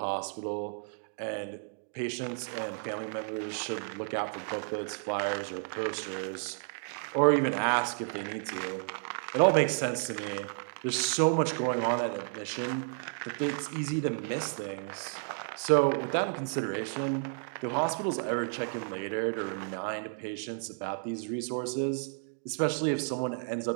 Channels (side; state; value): left; silent; 56 dB below the other